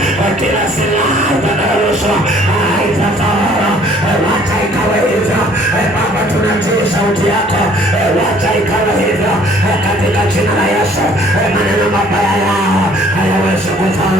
kila silaha utakayorushwa haitafaulu, wacha ikawe hivyo. Baba, tunatii sauti yako, wacha ikawe hivyo katika jina la Yesu. Maneno mabaya yao hayawezi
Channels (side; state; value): both; normal; correlation 0.57